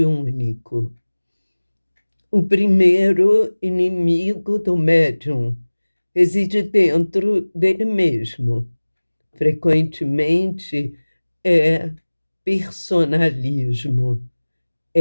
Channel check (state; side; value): inverted; both; correlation -1.00